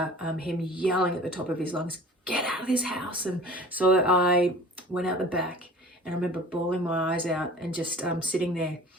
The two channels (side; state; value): both; normal; correlation 0.44